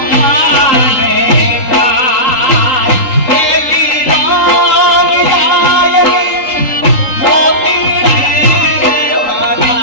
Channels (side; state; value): right; late; 3.8 ms